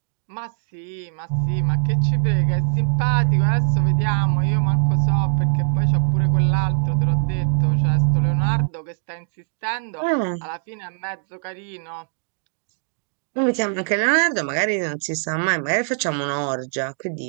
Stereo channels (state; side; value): silent; left; 64 dB below the other